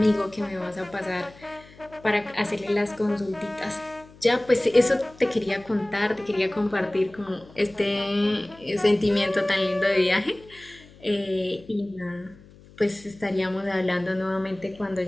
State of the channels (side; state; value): left; noise; hum, 23 dB below the sound